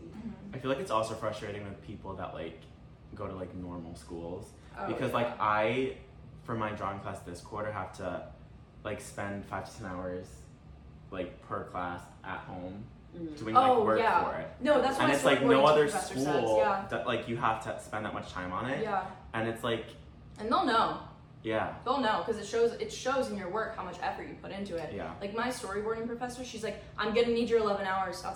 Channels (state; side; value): identical; both; correlation 1.00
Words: Mhm. I feel like it's also frustrating with people that like go to like normal schools Oh, because yeah. like I for my drawing class this quarter have to like spend 5 to 10 hours like per class at home doing like work yeah. for it. No, that's what And my it's like no storyboarding other professor school says. Yeah. that like you have to spend that much time on it. Yeah. And it's like, And they'll know. yeah. They'll know because it shows in your work how much effort you put into it. Yeah. Like my storyboarding professor, she's like, I'm gonna need your 11 hours